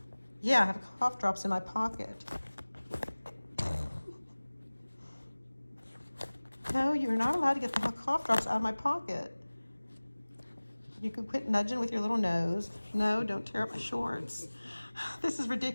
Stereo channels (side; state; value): both; inverted; correlation -1.00